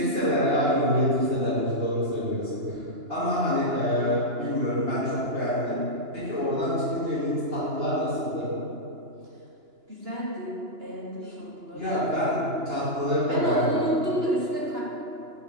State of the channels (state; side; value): late; left; 2.9 ms